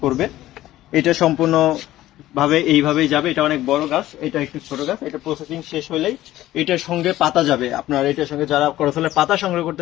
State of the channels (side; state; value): right; quieter; 14.9 dB